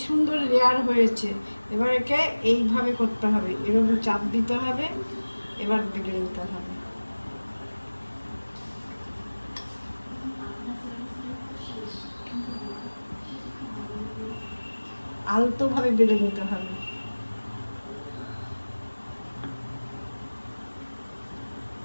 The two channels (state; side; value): inverted; both; correlation -1.00